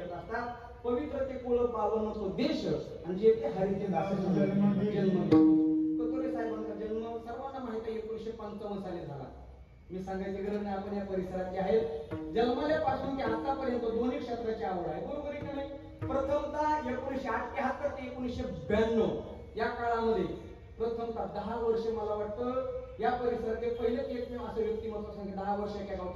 असतात. पवित्र ते कुळ पावन तो देश आणि जे ते हरीचे दास जन्म कतोरे साहेबांचा जन्म सर्वांना माहिती आहे 1955 साली झाला. मी सांगायची गरज नाही, आपण या परिसरात जे आहेत जन्मल्यापासून ते आतापर्यंत दोन्ही क्षेत्राची आवड आहे. बरोबर आहे की नाही? प्रथमतः 1978 ते 1992 या काळामध्ये प्रथमतः 10 वर्ष मला वाटतं या परिसराचे पहिलेच एकमेव असं व्यक्तिमत्व सांगितलं 10 वर्ष एका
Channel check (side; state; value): both; identical; correlation 1.00